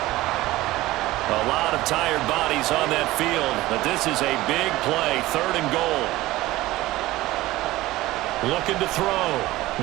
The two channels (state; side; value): quieter; left; 17.6 dB